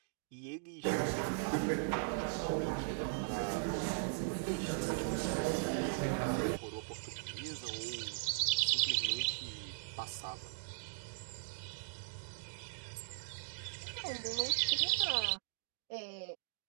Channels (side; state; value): left; silent; digital silence